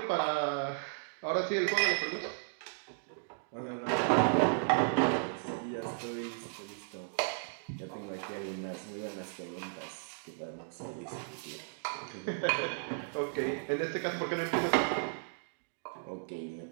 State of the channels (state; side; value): silent; left; digital silence